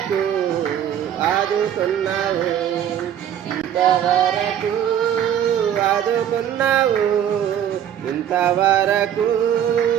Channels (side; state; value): left; quieter; 10.0 dB